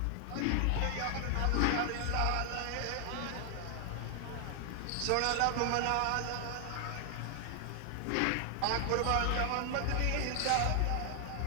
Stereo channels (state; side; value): different; both; correlation 0.00